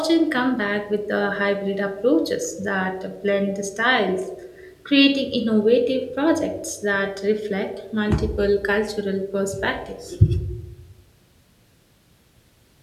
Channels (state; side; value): identical; both; correlation 1.00